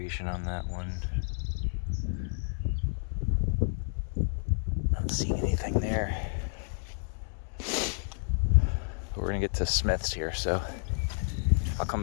on that one. Not seeing anything there. But we're gonna get to Smith's here, so I'll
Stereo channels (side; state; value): right; silent; 58 dB below the other